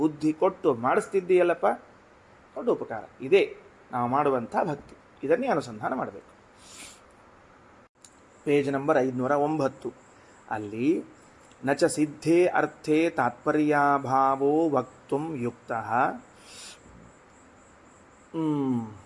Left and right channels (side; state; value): both; identical; correlation 1.00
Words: ಕೊಟ್ಟು ಮಾಡಿಸ್ತಿದ್ದೀಯಲ್ಲಪ್ಪ, ದೊಡ್ಡ ಉಪಕಾರ. ಇದೇ ನಾವು ಮಾಡುವಂಥ ಭಕ್ತಿ, ಇದನ್ನೇ ಅನುಸಂಧಾನ ಮಾಡಬೇಕು. ಪೇಜ್ ನಂಬರ್ 509 ಅಲ್ಲಿ ನಚ ಸಿದ್ಧೇ ಅರ್ಥೇ ತಾತ್ಪರ್ಯಾಭಾವೋ ವಕ್ತುಂ ಯುಕ್ತಃ